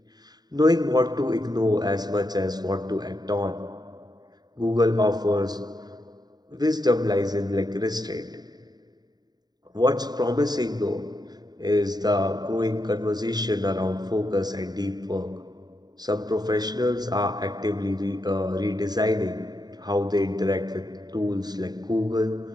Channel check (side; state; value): left; late; 0.20 ms